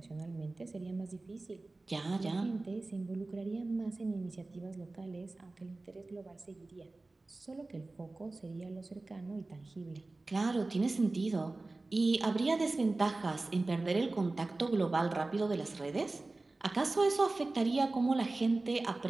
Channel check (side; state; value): left; quieter; 3.2 dB